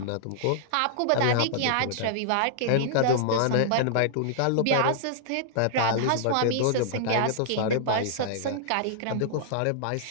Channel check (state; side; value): different; both; correlation -0.01